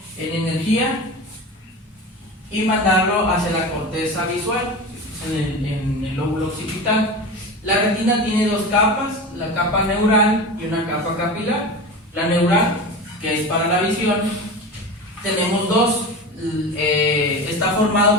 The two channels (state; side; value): normal; both; correlation 0.28